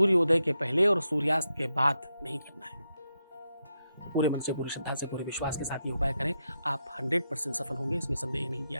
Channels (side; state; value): both; inverted; correlation -0.85